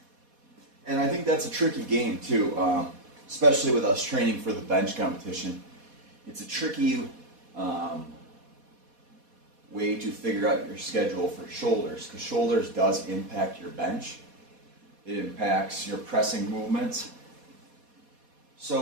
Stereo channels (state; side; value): late; left; 4.2 ms